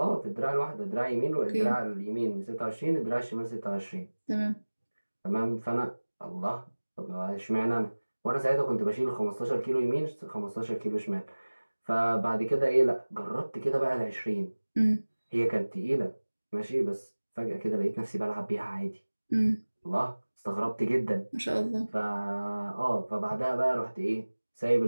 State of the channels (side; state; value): both; inverted; correlation -1.00